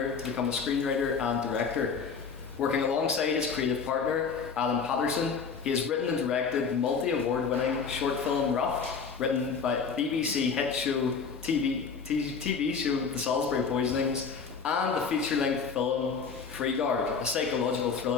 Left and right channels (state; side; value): quieter; right; 5.7 dB